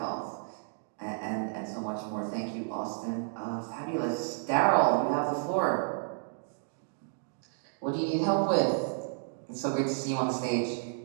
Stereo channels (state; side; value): silent; left; digital silence